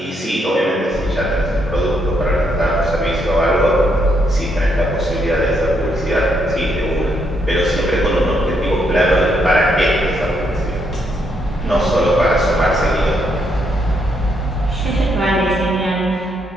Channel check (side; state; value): both; normal; correlation 0.76